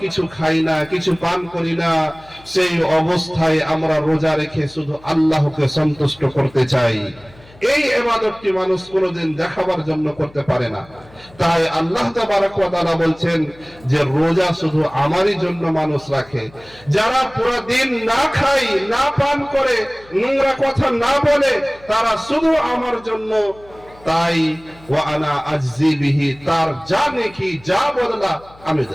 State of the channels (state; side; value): noise; left; hum, 25 dB below the sound